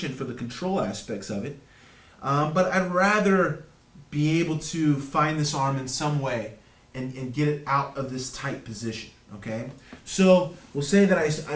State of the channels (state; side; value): identical; both; correlation 1.00